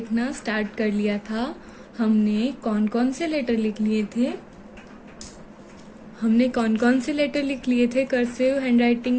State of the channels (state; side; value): identical; both; correlation 1.00